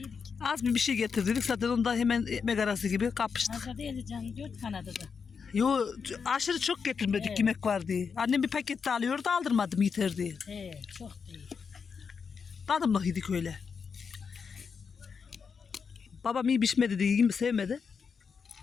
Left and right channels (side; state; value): right; quieter; 5.9 dB